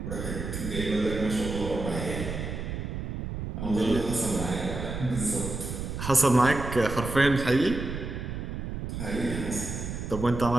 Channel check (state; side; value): noise; right; rumble, 5 dB below the sound